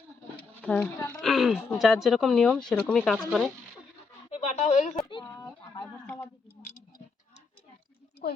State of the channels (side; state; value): right; quieter; 4.6 dB